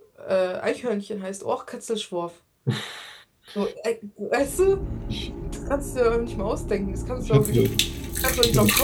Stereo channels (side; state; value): both; identical; correlation 1.00